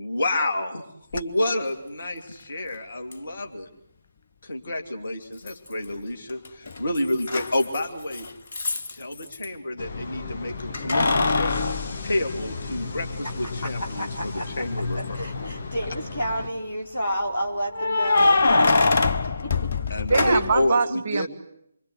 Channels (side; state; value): both; inverted; correlation -0.87